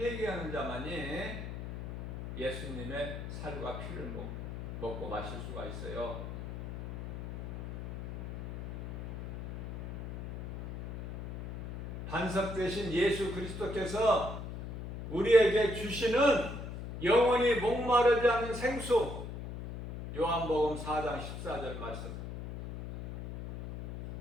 자만이 예수님의 살과 피를 먹고 마실 수가 있어요. 반석 대신 예수 그리스도께서 우리에게 주시는 영원히 목마르지 않는 생수, 요한복음 4장 14절 말씀.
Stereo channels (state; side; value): noise; left; hum, 8 dB below the sound